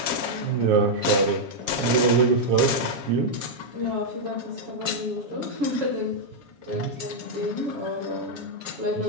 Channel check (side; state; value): left; late; 7.2 ms